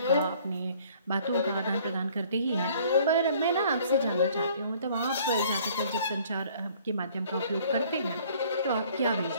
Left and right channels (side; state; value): both; inverted; correlation -0.56